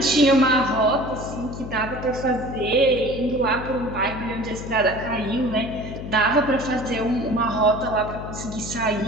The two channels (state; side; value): noise; left; hum, 9 dB below the sound